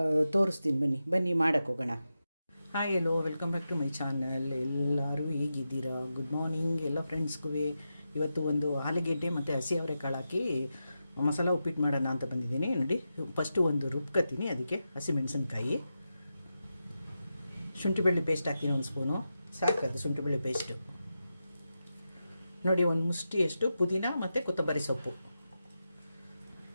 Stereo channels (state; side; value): inverted; both; correlation -0.89